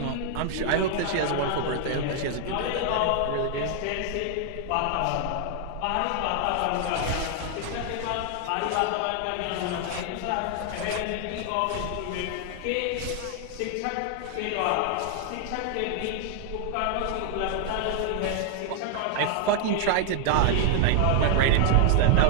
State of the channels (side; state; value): both; different; correlation 0.00